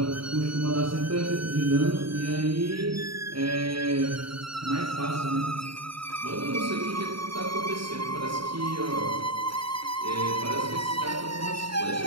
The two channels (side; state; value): left; late; 0.74 ms